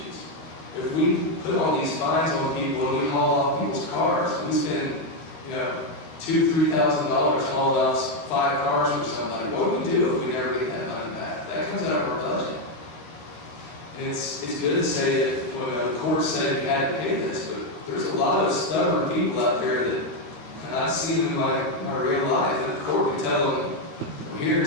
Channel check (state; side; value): late; right; 13 ms